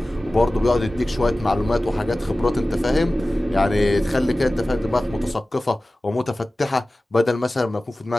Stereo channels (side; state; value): both; normal; correlation 0.97